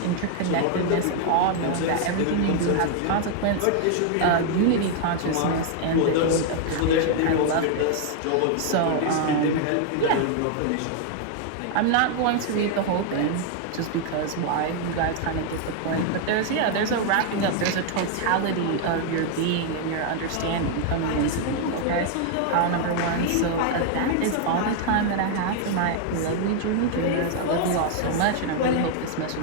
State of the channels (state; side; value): different; both; correlation 0.00